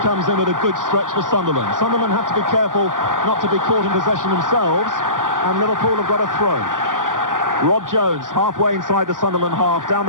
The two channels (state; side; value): late; left; 0.88 ms